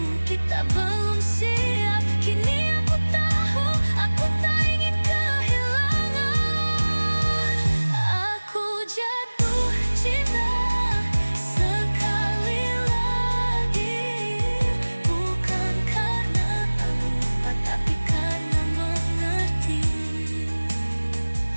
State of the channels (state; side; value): inverted; both; correlation -1.00